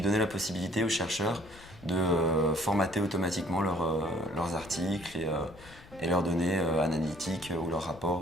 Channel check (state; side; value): noise; left; rumble, 21 dB below the sound